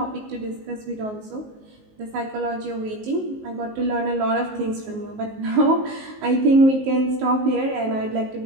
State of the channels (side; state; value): left; late; 19 ms